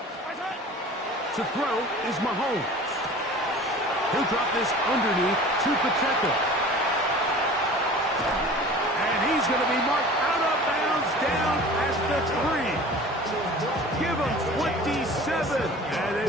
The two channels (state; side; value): normal; both; correlation 0.42